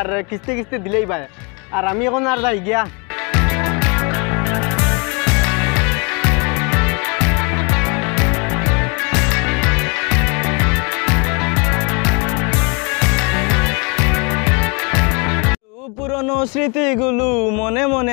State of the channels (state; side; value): quieter; right; 31.9 dB